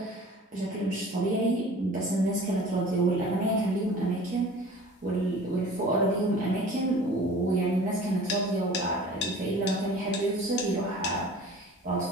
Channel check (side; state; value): both; normal; correlation 0.44